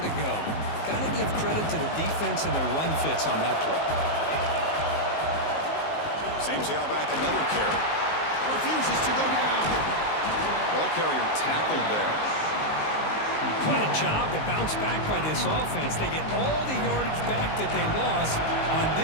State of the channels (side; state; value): right; late; 19 ms